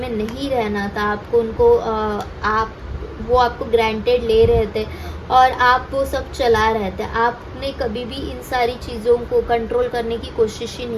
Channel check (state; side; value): identical; both; correlation 1.00